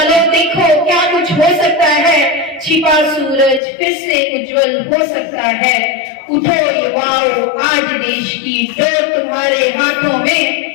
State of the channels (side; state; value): right; drops out; at 3.6 s